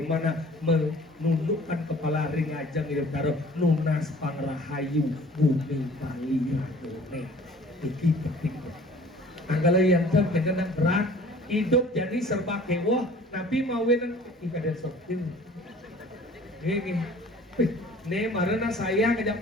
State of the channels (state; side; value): normal; both; correlation 0.50